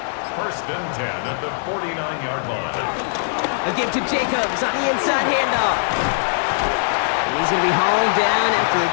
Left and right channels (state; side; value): silent; right; digital silence